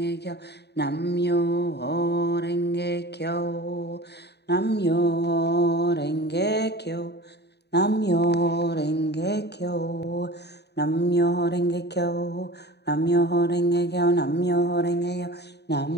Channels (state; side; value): late; right; 0.48 ms